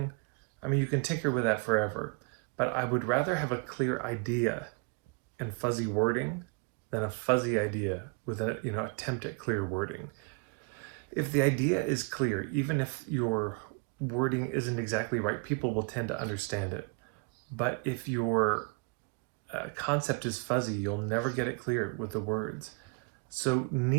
you can tinker with that forever, but I would rather have a clear idea and fuzzy wording than a fuzzy idea with an attempt at clear wording. If the idea is clear, even if your wording isn't exactly right, people will tend to understand it. But if your concept is fuzzy, you'll never get it clear with the words. So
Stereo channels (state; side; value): quieter; left; 31.5 dB